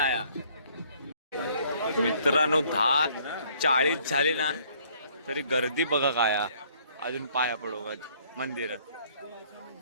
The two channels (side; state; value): both; inverted; correlation -0.61